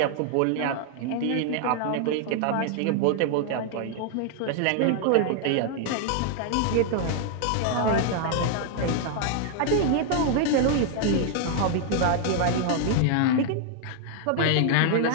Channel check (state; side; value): different; both; correlation 0.00